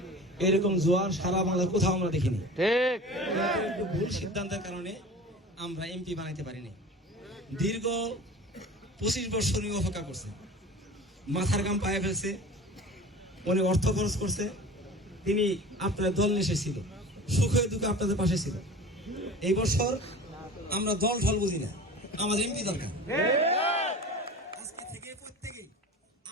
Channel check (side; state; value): both; normal; correlation 0.37